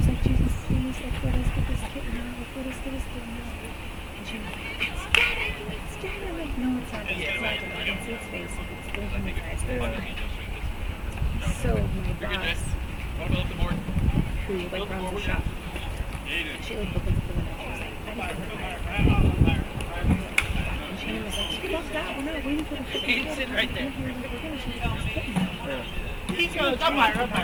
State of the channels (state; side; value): identical; both; correlation 1.00